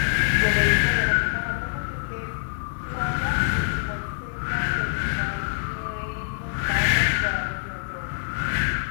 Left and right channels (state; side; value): silent; right; digital silence